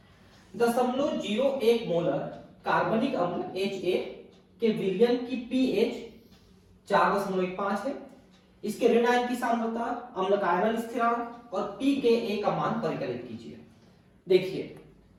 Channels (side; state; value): both; identical; correlation 1.00